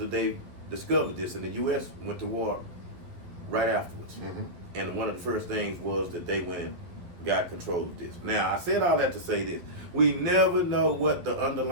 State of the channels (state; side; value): late; left; 11 ms